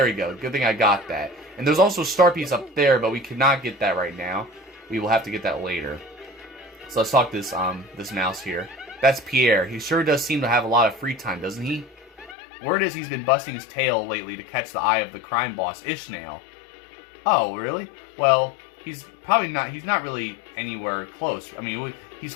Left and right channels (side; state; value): right; drops out; at 12.4 s